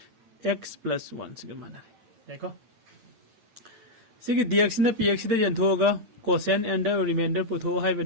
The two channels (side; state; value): left; late; 8.6 ms